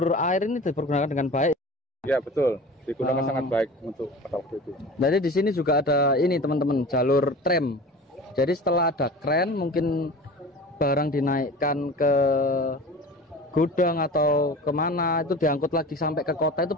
air ini dipergunakan dengan baik. Ya betul, digunakan sangat baik untuk pada waktu itu. Jadi di sini juga ada ini, teman-teman, jalur tram. Jadi setelah ada kren, mungkin barang dinaikkan ke gudang atau kemana, itu diangkut lagi sampai ke kota itu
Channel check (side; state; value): both; normal; correlation 0.37